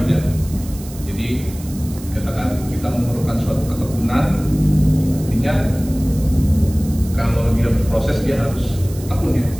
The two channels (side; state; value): right; noise; hiss, 17 dB below the sound